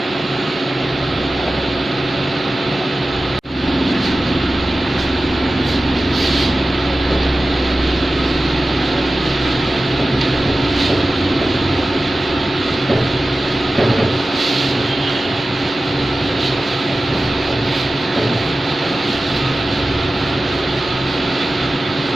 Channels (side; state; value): both; normal; correlation 0.95